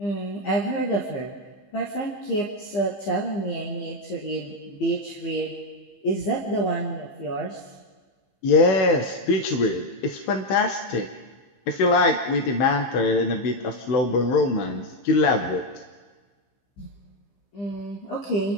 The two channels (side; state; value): right; late; 15 ms